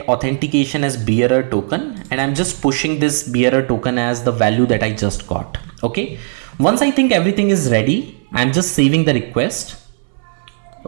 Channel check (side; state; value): left; silent; 63 dB below the other